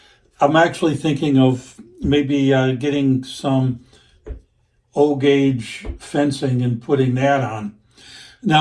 I'm actually thinking of maybe getting some O-gauge fencing and putting that on.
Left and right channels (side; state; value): both; identical; correlation 1.00